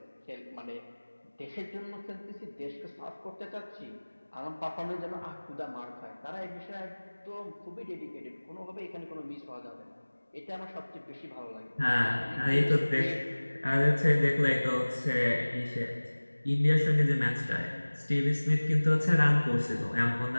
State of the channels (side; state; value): both; inverted; correlation -1.00